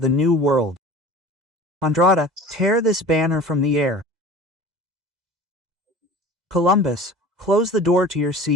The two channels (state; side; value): late; left; 2.0 ms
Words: the new world. Andrada, tear this banner from the air. Columbus, close the door to your